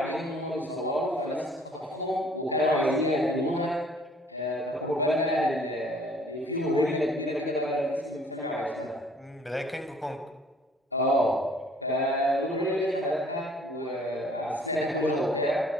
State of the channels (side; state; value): both; normal; correlation 0.56